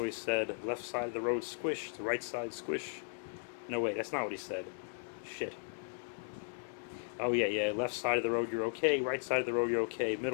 said, left side of the road squish, the right side squish. No, wait, that's not what he said. Shit. Oh, yeah, left side of the road you're okay, right side of the road you're okay,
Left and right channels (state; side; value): silent; right; digital silence